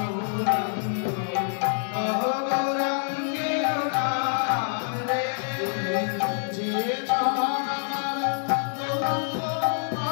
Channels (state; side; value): silent; right; 61 dB below the other